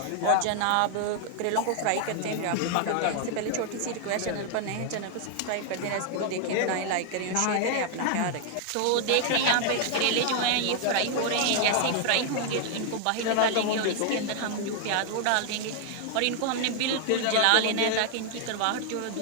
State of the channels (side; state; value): both; different; correlation 0.00